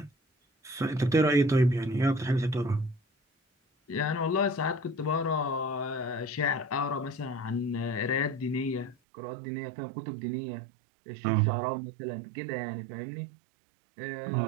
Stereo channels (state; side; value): drops out; left; at 9.0 s